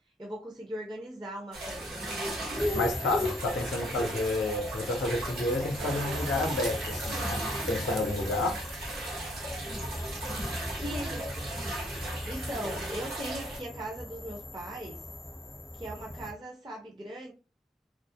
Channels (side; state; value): both; normal; correlation 0.64